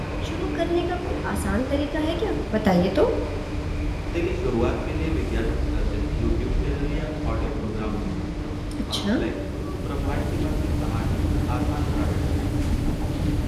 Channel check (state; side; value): identical; both; correlation 1.00